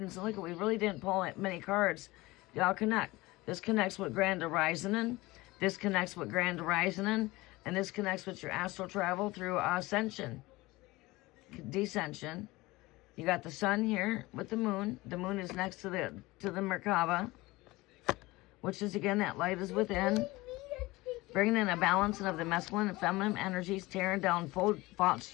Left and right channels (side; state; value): right; quieter; 20.8 dB